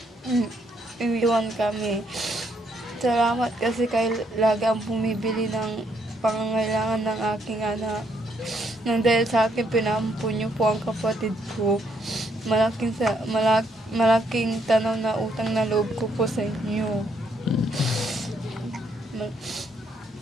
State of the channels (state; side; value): normal; both; correlation 0.73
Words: iwan kami. Salamat kasi kayo lagi ang bumibili ng pangangailangan ng aking anak. Nang dahil sa akin, pinampun niyo po ang kapatid ko. Malaking tanaw na utang na loob ko po sa inyo.